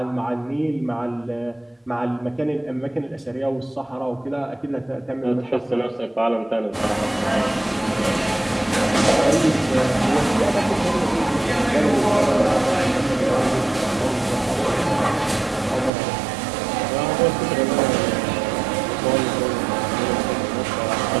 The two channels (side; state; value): left; drops out; at 15.9 s